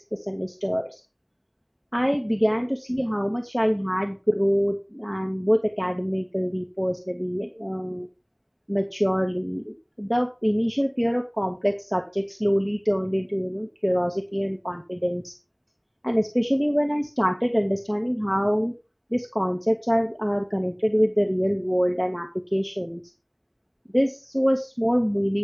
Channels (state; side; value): identical; both; correlation 1.00